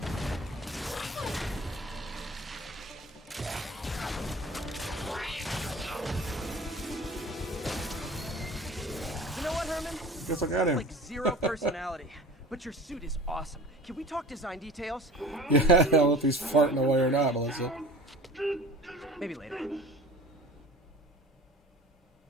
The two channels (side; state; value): both; normal; correlation 0.41